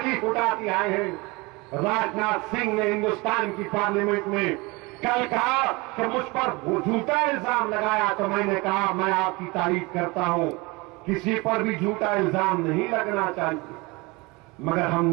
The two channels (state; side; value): quieter; left; 25.3 dB